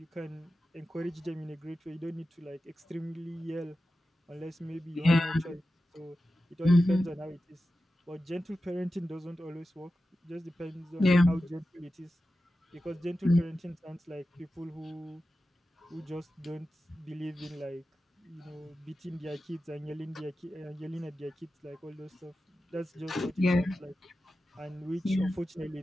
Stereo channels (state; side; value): normal; both; correlation 0.93